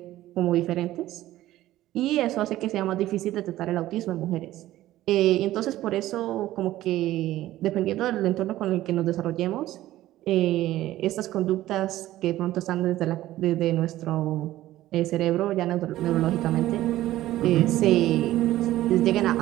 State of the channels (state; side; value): quieter; left; 15.0 dB